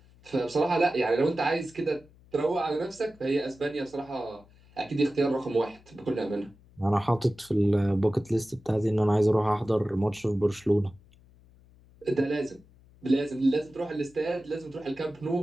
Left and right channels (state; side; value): noise; left; hum, 27 dB below the sound